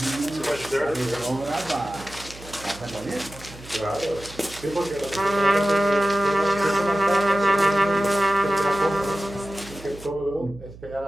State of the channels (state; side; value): noise; right; hum, 18 dB below the sound